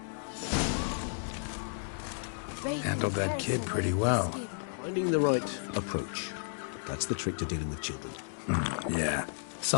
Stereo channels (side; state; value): right; silent; digital silence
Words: Handled that kid pretty well. Finding the right approach. That's the trick to dealing with children. Yeah,